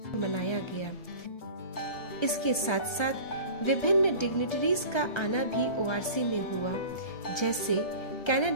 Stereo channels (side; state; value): right; late; 1.6 ms